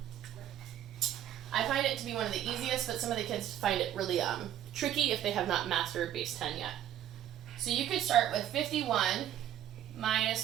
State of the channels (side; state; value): left; quieter; 11.3 dB